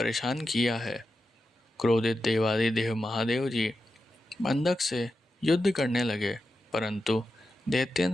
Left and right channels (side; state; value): both; normal; correlation 0.90